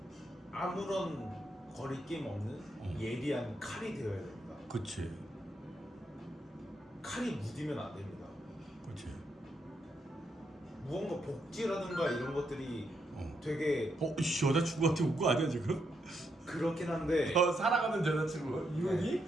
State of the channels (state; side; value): normal; both; correlation 0.79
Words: 아무런 거리낌 없는 예리한 칼이 되어야 됩니다. 그치. 칼이 무디면 안 됩니다. 그치. 무언가 복지라든가 이런 것들이 되게 여자친구한테 온 거 아니야 지금? 그렇긴 한데 사랑하는 여자친구 이혼이?